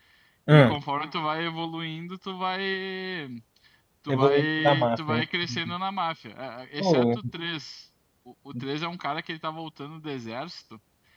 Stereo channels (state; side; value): identical; both; correlation 1.00